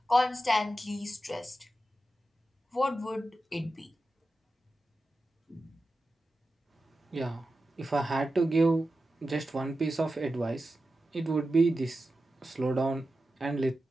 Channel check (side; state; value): both; normal; correlation 0.92